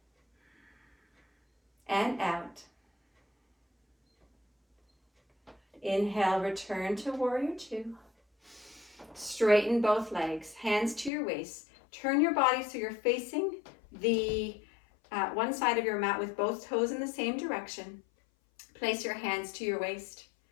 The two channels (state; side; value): drops out; right; at 11.1 s